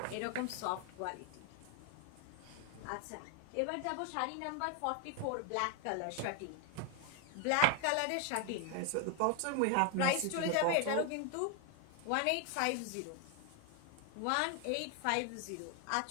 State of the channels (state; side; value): different; both; correlation 0.00